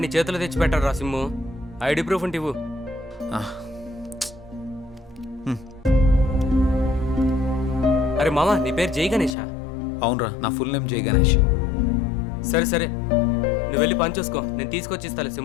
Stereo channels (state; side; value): drops out; right; at 9.3 s